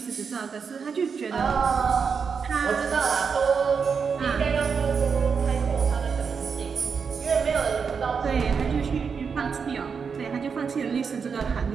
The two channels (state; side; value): quieter; left; 5.9 dB